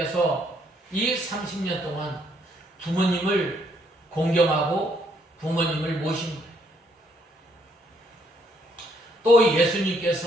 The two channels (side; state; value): both; normal; correlation 0.70